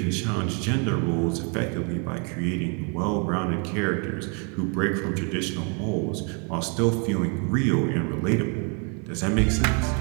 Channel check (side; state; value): left; quieter; 36.5 dB